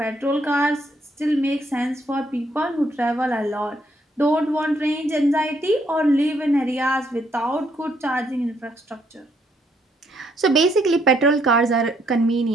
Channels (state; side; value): normal; both; correlation 0.71